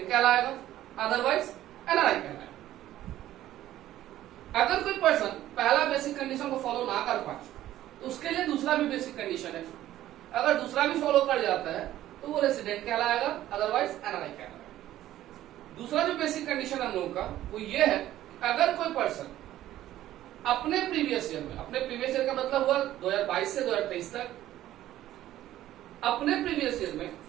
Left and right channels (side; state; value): left; quieter; 13.6 dB